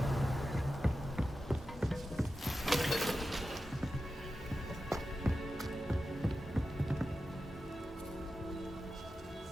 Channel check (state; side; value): normal; both; correlation 0.92